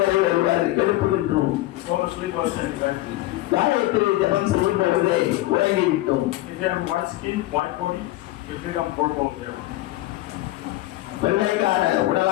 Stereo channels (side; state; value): right; quieter; 17.4 dB